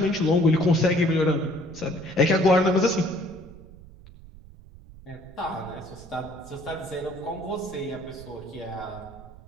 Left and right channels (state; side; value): noise; right; rumble, 19 dB below the sound